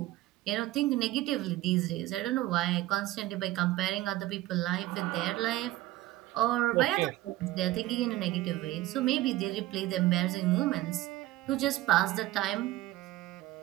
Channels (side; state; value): left; quieter; 16.8 dB